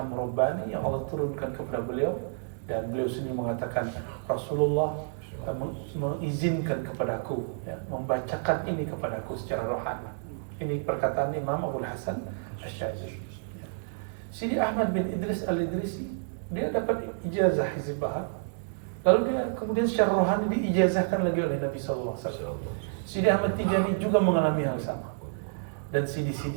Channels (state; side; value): silent; left; 58 dB below the other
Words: Rabbani yang Allah turunkan kepada beliau, dan beliau sendiri mengatakan Rasulullah mengizinkan kepadaku, ya, membacakan ini kepadaku secara rohani. Ini perkataan Imam Abul Hasan Asy-Syadzili. Sidi Ahmad bin Idris Al-Idrisi, dia dapat ijazah hizib bahar, lalu dia kemudian secara rohani diijazahkan lagi oleh Nabi SAW. Sidi Ahmad Tijani juga mengalami hal sama, dan